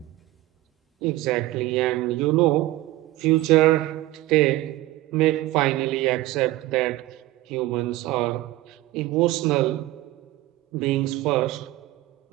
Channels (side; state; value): left; quieter; 17.4 dB